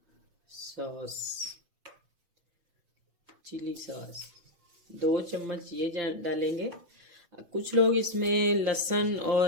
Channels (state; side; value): late; left; 6.0 ms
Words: सॉस, चिली सॉस 2 चम्मच ये डालेंगे। कुछ लोग इसमें लहसुन